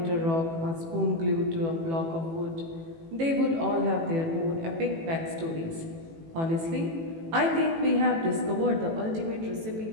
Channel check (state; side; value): late; left; 18 ms